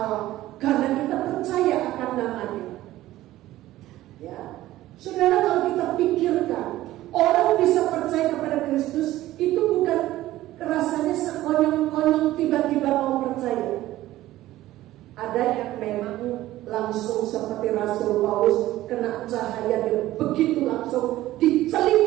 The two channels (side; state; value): left; quieter; 15.4 dB